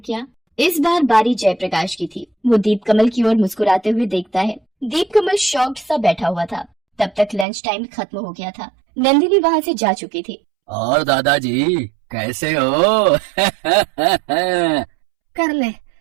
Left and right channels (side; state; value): left; drops out; at 7.5 s